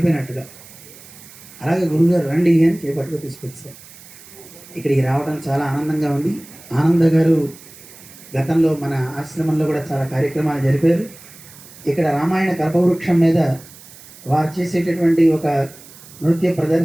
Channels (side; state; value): right; noise; hiss, 20 dB below the sound